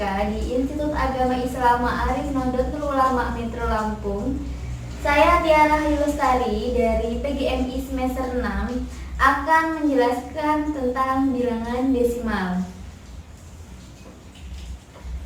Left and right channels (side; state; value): both; identical; correlation 1.00